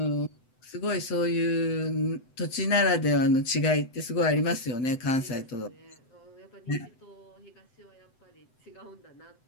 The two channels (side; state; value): right; late; 7.9 ms